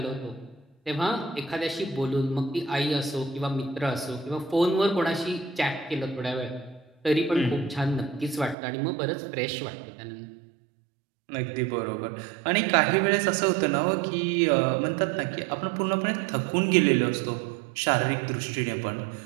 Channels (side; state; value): left; drops out; at 8.6 s